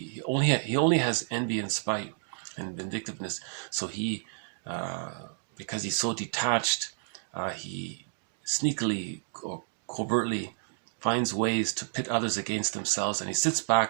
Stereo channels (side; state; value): left; silent; digital silence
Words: only has envy and spite and vindictiveness. So because he's so detached, he sneakily or covertly finds ways to pit others against themselves, and he sits